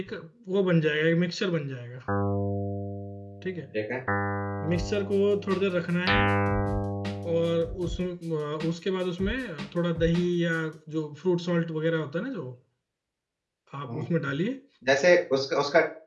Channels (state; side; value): identical; both; correlation 1.00